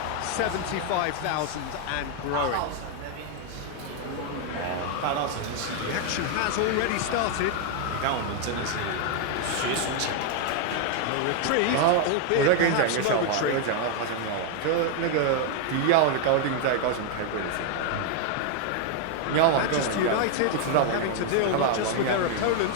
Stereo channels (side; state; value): both; different; correlation 0.00